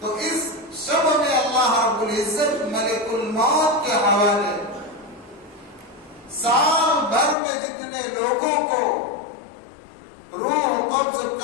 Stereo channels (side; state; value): right; drops out; at 7.4 s